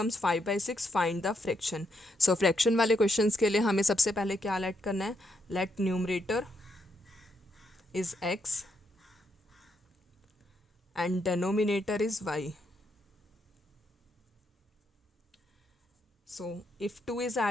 5 by 6. Find the fraction. So fraction वाले questions के लिए हमें सबसे पहले क्या let करना है? Let numerator is x and denominator is y. So if 2 is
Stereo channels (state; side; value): normal; both; correlation 0.78